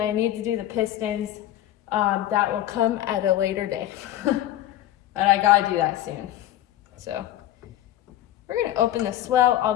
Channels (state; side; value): quieter; right; 13.1 dB